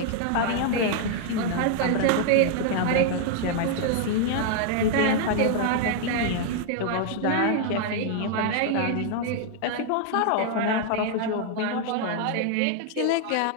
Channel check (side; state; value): both; different; correlation 0.00